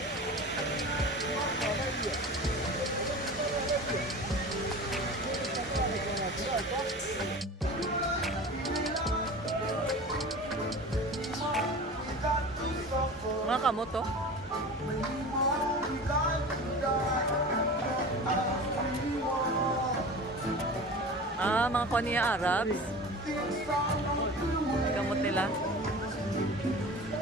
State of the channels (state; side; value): normal; both; correlation 0.35